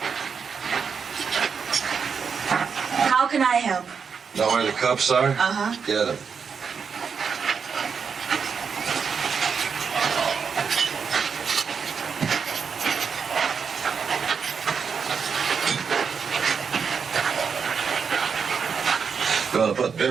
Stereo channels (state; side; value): quieter; left; 6.1 dB